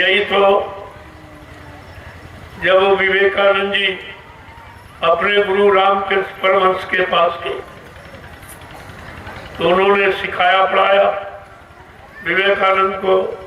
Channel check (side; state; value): both; identical; correlation 1.00